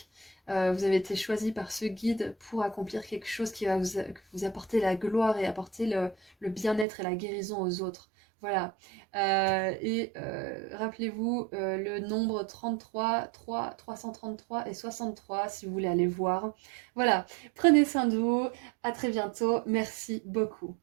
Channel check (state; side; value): drops out; left; at 6.9 s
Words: Vous avez été choisi par ce guide pour accomplir quelque chose qui va vous apporter la gloire et apporter le bien-être et la guérison aux autres. Voilà. Rappelez-vous le nombre 33, 333 et 63 si vous voulez aller voir. Voilà. Prenez soin de vous. À très bientôt. Merci beaucoup.